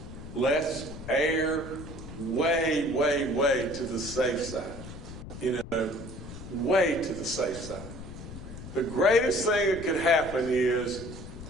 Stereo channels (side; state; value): left; noise; rumble, 12 dB below the sound